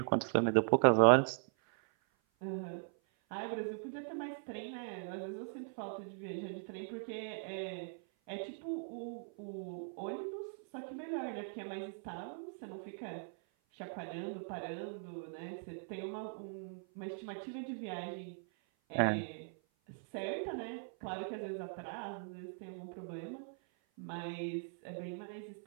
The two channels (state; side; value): silent; left; 51 dB below the other